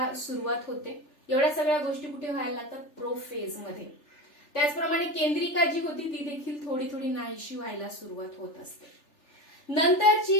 सुरुवात होते. एवढ्या सगळ्या गोष्टी कुठे व्हायला लागतात, प्रोफेज मध्ये. त्याचप्रमाणे केंद्रिका जी होती ती देखील थोडी थोडी नाहीशी व्हायला सुरुवात होत असते.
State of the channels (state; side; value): late; right; 3.4 ms